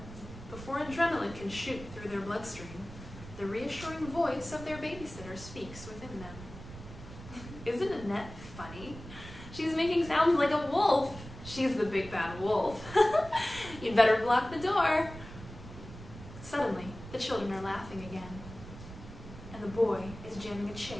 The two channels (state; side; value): noise; right; rumble, 14 dB below the sound